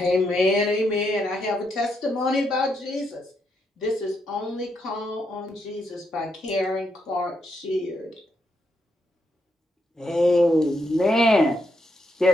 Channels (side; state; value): both; normal; correlation 0.79